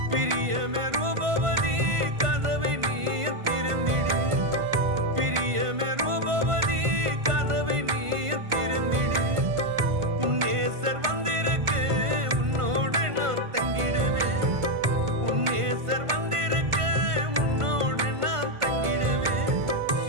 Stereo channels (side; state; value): left; late; 1.5 ms